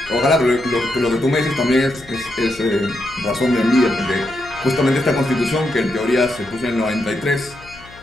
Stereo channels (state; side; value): noise; left; hum, 22 dB below the sound